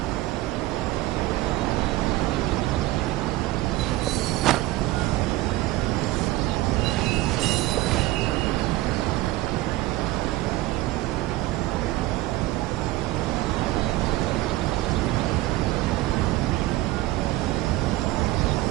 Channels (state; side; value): quieter; left; 17.5 dB